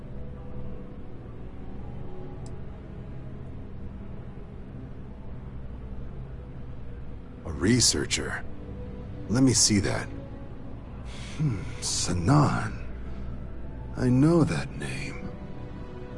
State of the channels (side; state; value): both; identical; correlation 1.00